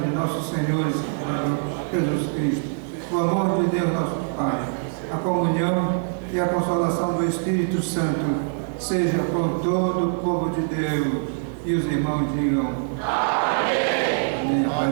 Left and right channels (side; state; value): left; silent; digital silence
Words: nosso Senhor e Salvador Jesus Cristo, o amor de Deus nosso Pai, a comunhão e a consolação do Espírito Santo seja com todo o povo de Deus. E os irmãos digam amém. Amém. A